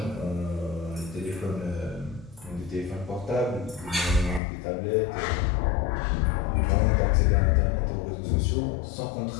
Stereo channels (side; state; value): right; drops out; at 4.4 s